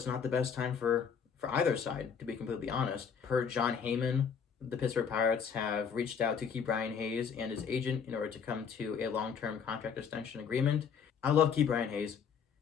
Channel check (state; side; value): quieter; right; 6.8 dB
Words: not the best time for either side, to be completely honest. Per John Heyman, the Pittsburgh Pirates have reached out to KeBryan Hayes and his agent in order to come to a long-term contract extension agreement. I love KeBryan Hayes,